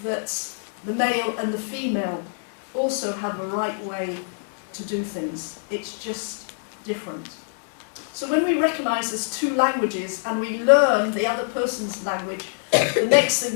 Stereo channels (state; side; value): silent; right; digital silence